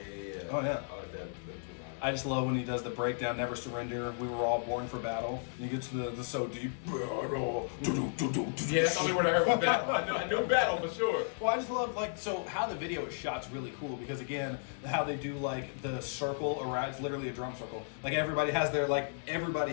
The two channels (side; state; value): right; silent; digital silence